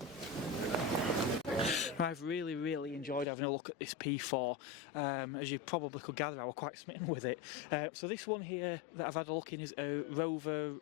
I've really enjoyed having a look at this P4. As you probably could gather, I was quite smitten with it. So this one here that I've had a look in is a Rover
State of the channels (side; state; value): right; drops out; at 3.2 s